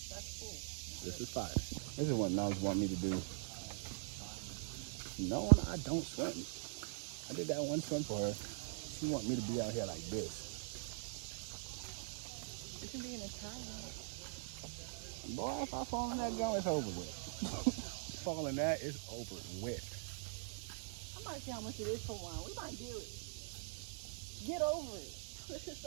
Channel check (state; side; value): silent; left; digital silence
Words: That's cool. This is fire. This is what Nubs want me to do. Knowing I don't swim. I did that one swim for her. She want me to be out here like this. You can be in a towel. Boy, if I fall in that gun, it's over with. Fall in that, it's over with. I might see how much it is for one. We might do it. Get over it. This is